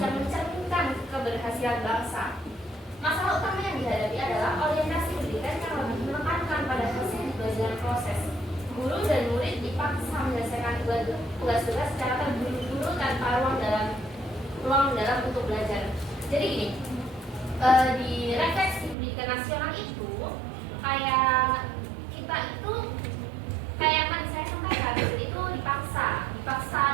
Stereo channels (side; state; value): left; drops out; at 18.9 s